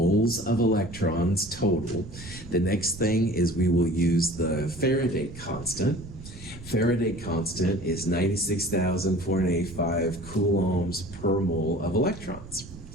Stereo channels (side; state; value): right; noise; rumble, 16 dB below the sound